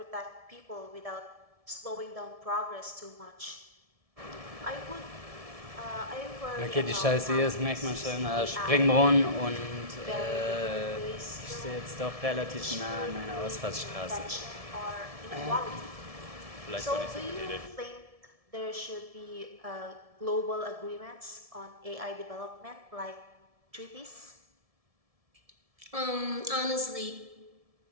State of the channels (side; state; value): left; late; 1.7 ms